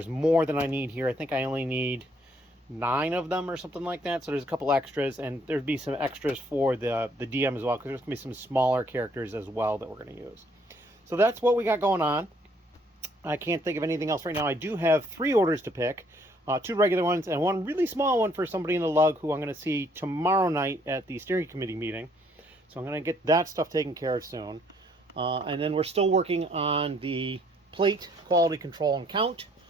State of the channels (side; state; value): both; normal; correlation 0.65